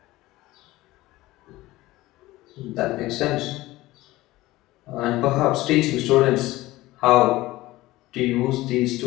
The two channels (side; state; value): right; quieter; 18.0 dB